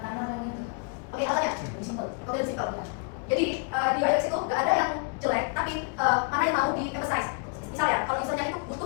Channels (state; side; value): quieter; right; 36.9 dB